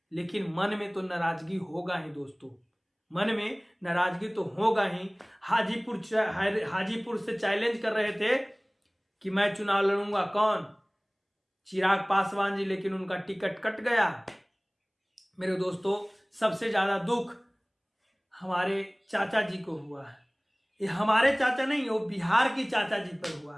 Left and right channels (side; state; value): both; identical; correlation 1.00